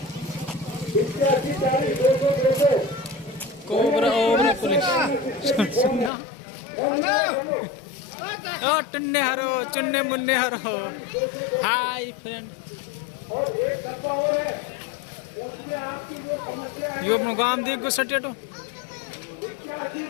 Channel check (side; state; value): right; drops out; at 6.1 s